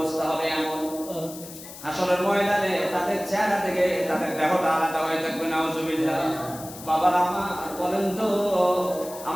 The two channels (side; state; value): left; noise; hiss, 15 dB below the sound